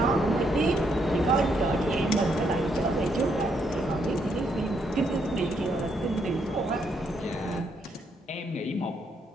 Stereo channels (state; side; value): normal; both; correlation 0.75